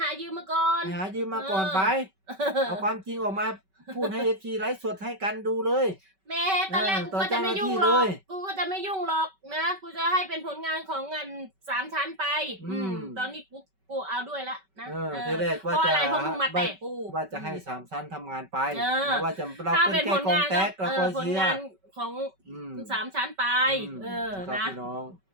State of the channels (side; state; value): left; late; 5.2 ms